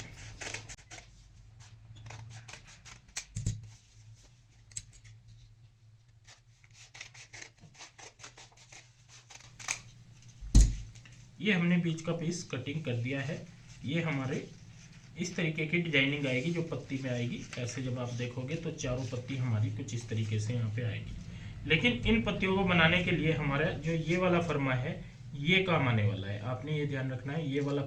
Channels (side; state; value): both; identical; correlation 1.00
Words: ये हमने बीच का पीस कटिंग कर दिया है। ये हमारे इस तरीके की डिजाइनिंग आएगी, जो पत्ती में आएगी ऐसे। जब आप देखोगे तो चारों पत्ती हमारी कुछ इस तरीके से यहाँ पे आएगी। लेकिन इन पत्तियों को बनाने के लिए हमारा जो ये वाला फर्मा है, ये काम आने वाला है। आपने ये ध्यान रखना है, ये वाला